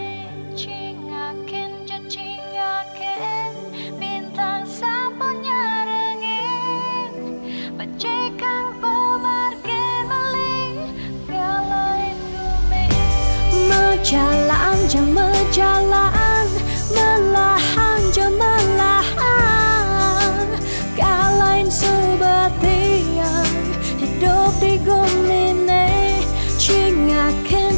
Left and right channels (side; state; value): both; inverted; correlation -1.00